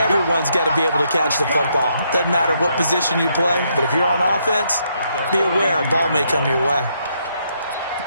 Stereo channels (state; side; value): inverted; both; correlation -0.75